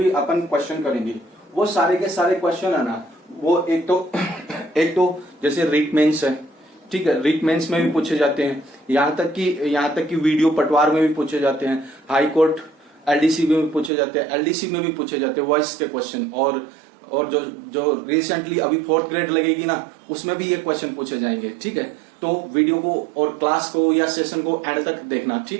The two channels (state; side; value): drops out; left; at 13.9 s